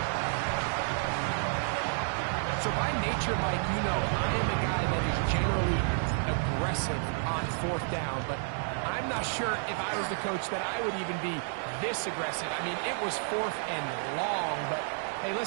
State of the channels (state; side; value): silent; left; 57 dB below the other